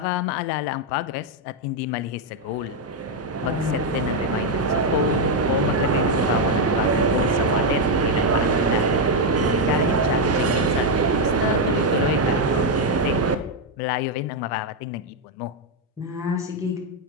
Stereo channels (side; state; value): both; normal; correlation 0.02